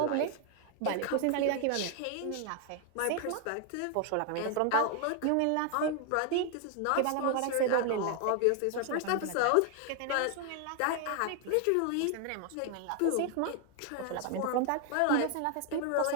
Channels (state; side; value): different; both; correlation 0.00